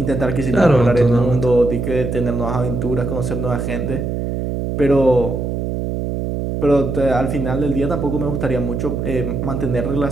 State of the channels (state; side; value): noise; right; hum, 2 dB below the sound